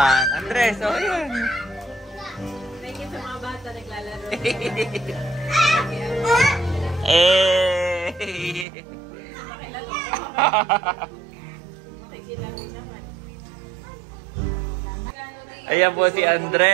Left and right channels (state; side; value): drops out; left; at 8.7 s